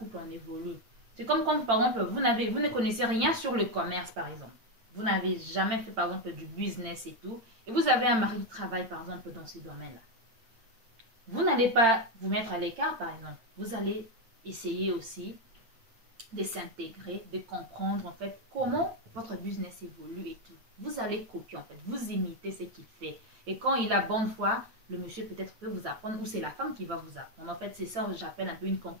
on évolue. C'est comme quand, par exemple, vous ne connaissez rien sur le commerce, par exemple. Vous n'avez jamais fait, par exemple, du business et tout. Et vous avez un mari qui travaille, par exemple, dans ce domaine-là. Vous n'allez pas vous mettre à l'écart, par exemple. Vous allez essayer aussi de s'intégrer, de comprendre, en fait, comment votre business évolue et tout. Vous allez copier, en fait. Vous imitez ce qu'il fait. Et quand il a bonne foi, le monsieur peut-être peut vous apprendre, ou c'est la femme qui va vous apprendre. En fait, c'est ça que j'appelle un peu une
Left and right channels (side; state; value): left; late; 8.9 ms